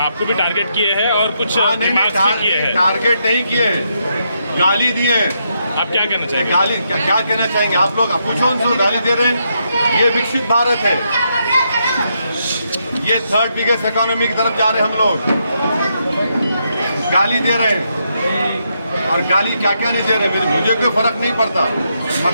टारगेट किए हैं और कुछ रिमार्क्स भी किए हैं। टारगेट नहीं किए हैं, गाली दिए हैं। आप क्या कहना चाहेंगे? गाली क्या कहना चाहेंगे आप लोग? पूछो उनसे, गाली दे रहे हैं। ये विकसित भारत है, ये थर्ड बिगेस्ट इकोनॉमी की तरफ जा रहे हैं हम लोग। गाली दे रहे हैं, और गाली क्या क्या नहीं दे रहे, मुझे कोई फर्क नहीं पड़ता,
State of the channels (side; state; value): both; inverted; correlation -0.79